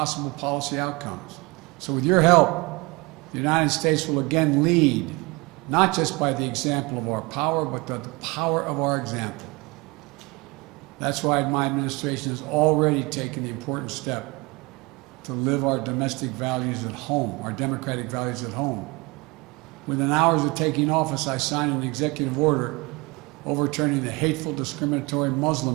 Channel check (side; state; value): left; quieter; 25.5 dB